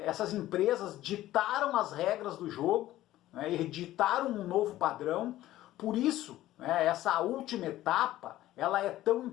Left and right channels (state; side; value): quieter; right; 14.8 dB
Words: essas empresas ditaram as regras do jogo, né, e ditaram um novo padrão. Por isso, né, essa última etapa, ela é tão